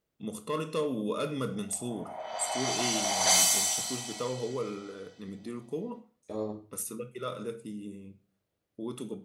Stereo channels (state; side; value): identical; both; correlation 1.00